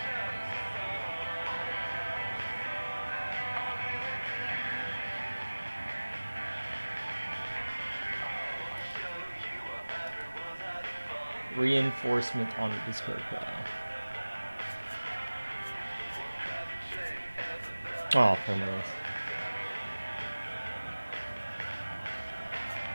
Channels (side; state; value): both; inverted; correlation -1.00